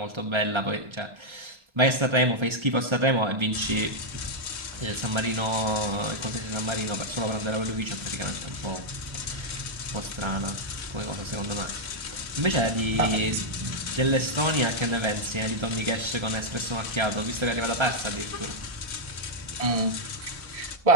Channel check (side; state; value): left; late; 1.3 ms